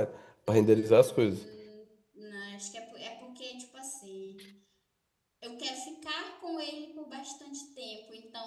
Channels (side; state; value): both; identical; correlation 1.00